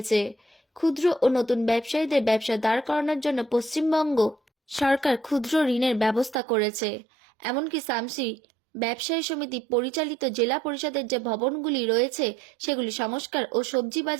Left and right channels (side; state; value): left; drops out; at 6.4 s